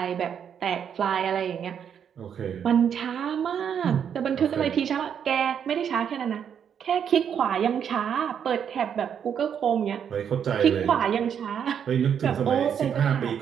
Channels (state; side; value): quieter; left; 8.2 dB